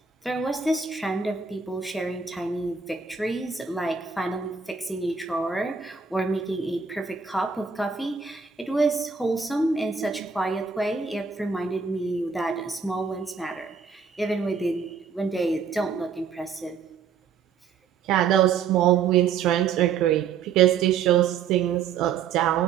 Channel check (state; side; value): quieter; left; 6.2 dB